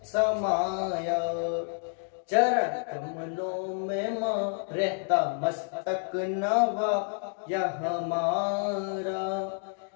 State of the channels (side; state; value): right; silent; 58 dB below the other